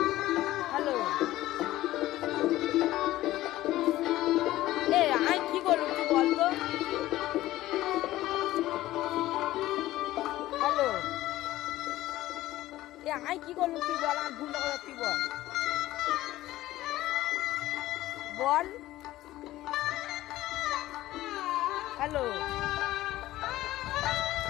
হ্যালো, আমি কি করলুম তুই বল তো। হ্যালো, আমি কি করলুম তুই বল। আমার ভুলটা কথা তুই বল বল। হ্যালো,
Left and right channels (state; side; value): quieter; right; 15.8 dB